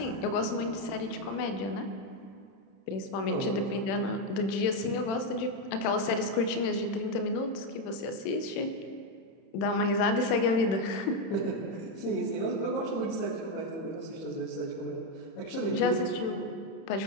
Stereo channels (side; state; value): right; late; 31 ms